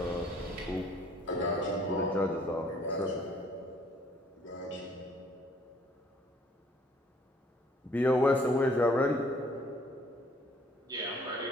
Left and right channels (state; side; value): normal; both; correlation 0.60